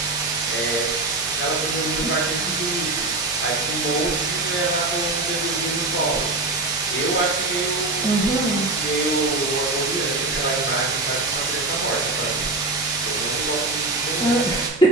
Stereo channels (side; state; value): left; quieter; 3.1 dB